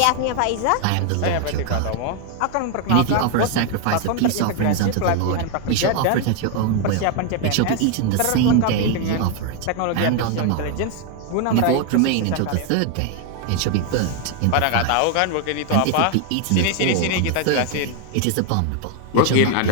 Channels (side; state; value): both; different; correlation 0.01